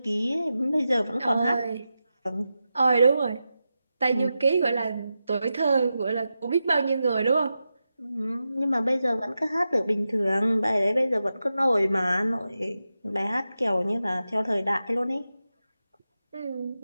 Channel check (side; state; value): both; inverted; correlation -0.91